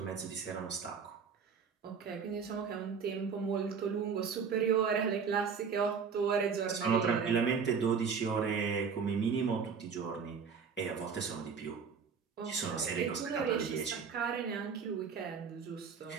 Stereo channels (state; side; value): quieter; left; 6.1 dB